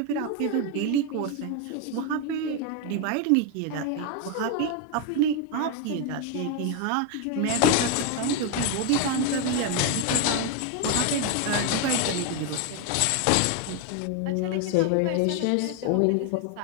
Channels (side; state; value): both; different; correlation 0.01